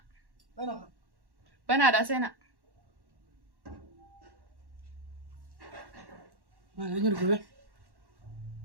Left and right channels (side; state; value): left; late; 1.1 ms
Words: بنادا سينا ما نيركوبه